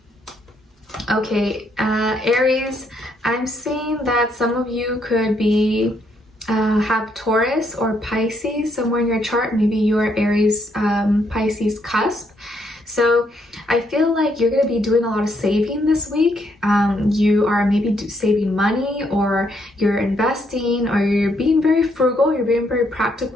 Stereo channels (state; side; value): normal; both; correlation 0.73